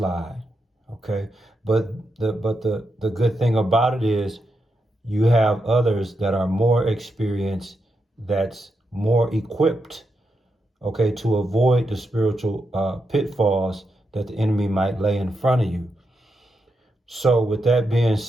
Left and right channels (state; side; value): normal; both; correlation 0.85